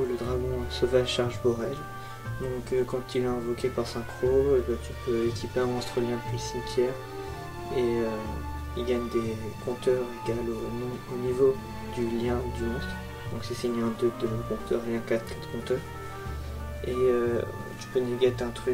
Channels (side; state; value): both; identical; correlation 1.00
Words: le dragon sauvage charge Borel. Donc quand il est invoqué par synchro, tu peux équiper un monstre lien depuis le cimetière et il gagne des compteurs égales au niveau du lien du monstre. Donc si c'est lien 2 de compteur, lien 4 compteurs. Et tu peux négate un